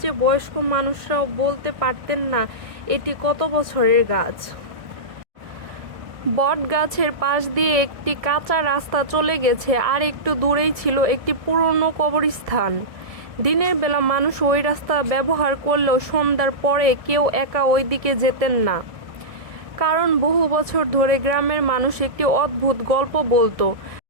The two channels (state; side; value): late; left; 1.7 ms